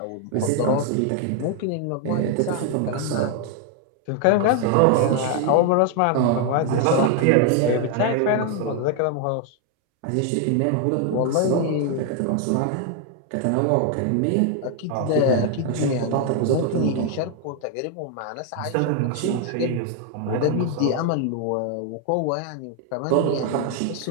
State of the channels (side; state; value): both; different; correlation 0.00